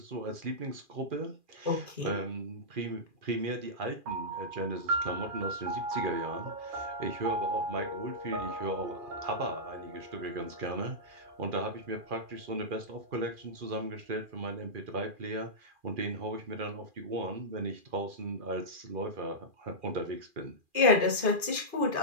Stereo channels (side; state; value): left; late; 2.4 ms